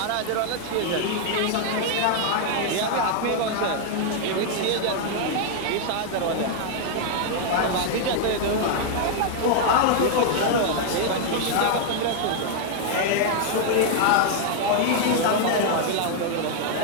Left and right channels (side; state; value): both; different; correlation 0.00